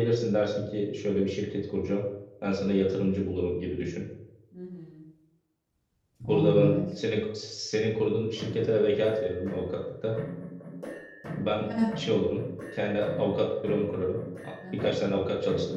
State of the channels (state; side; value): identical; both; correlation 1.00